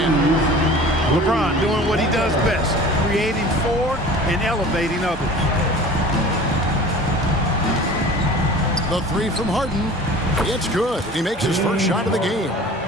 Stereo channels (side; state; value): both; normal; correlation 0.42